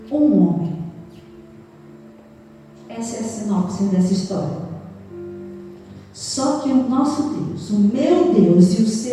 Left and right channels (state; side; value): identical; both; correlation 1.00